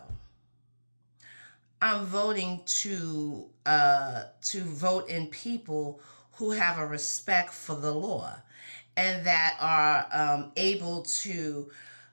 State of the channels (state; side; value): inverted; both; correlation -1.00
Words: I'm voting to vote in people who have a respect for the law and that are able to